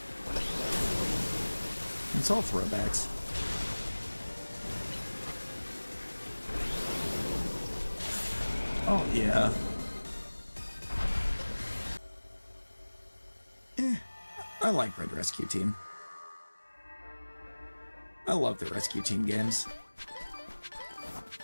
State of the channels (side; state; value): both; inverted; correlation -1.00